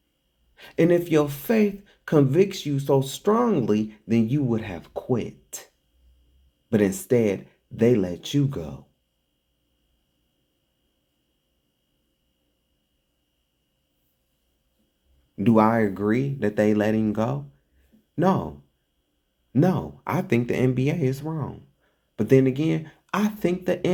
And if your faith convicts you so strongly, then you would have quit. But instead, they let you go. Do I agree that they let him go? No. No, I think the NBA is wrong. But then again, I think the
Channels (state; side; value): identical; both; correlation 1.00